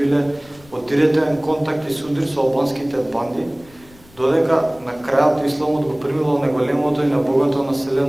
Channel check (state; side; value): noise; left; rumble, 25 dB below the sound